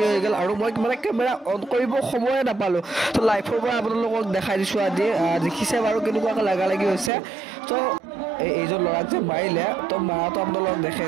হৈ গ'ল আৰু মই মানে কেমেৰা অন কৰিব সময়ে নাপালোঁ তো লাইভৰ পৰা আপোনালোকক দেখাই দিছোঁ আজি দেখিছে বাৰু কেনেকুৱাকৈ লাগালাগি হৈছে তো এইজন ল'ৰাক যে মাৰিলে তো মাৰাটো আপোনালোকক দেখাই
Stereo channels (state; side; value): drops out; left; at 7.1 s